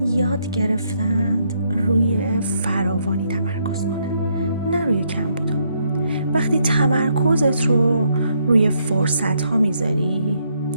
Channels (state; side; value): inverted; both; correlation -0.74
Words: یاد گرفتند روی فراوانی تمرکز کنن، نه روی کم بودن. وقتی تمرکزت رو روی فرصت ها میذاری،